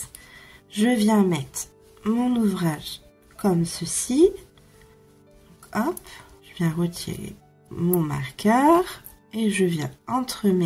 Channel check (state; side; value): identical; both; correlation 1.00